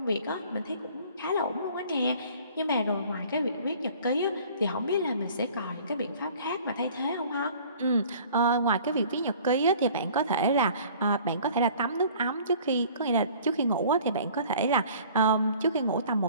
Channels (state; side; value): inverted; both; correlation -0.50